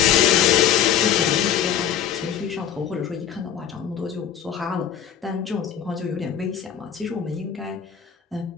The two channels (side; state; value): right; quieter; 9.3 dB